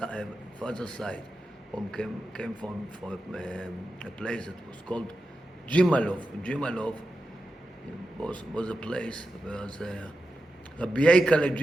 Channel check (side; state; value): both; normal; correlation 0.90